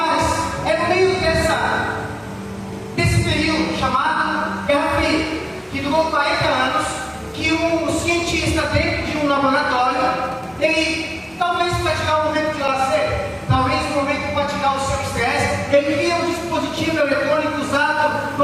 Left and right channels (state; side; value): identical; both; correlation 1.00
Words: um cientista dentro de um laboratório, ele talvez para tirar um momento de lazer, talvez um momento para tirar o seu estresse, ele cria um dispositivo eletrônico usado